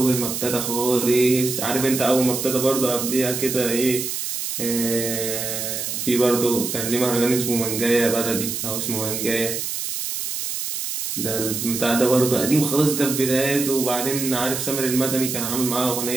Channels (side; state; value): right; noise; hiss, 4 dB below the sound